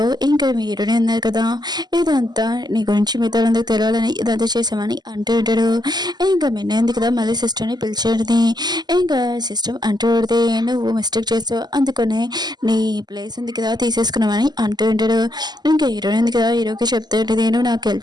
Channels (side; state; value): left; late; 0.20 ms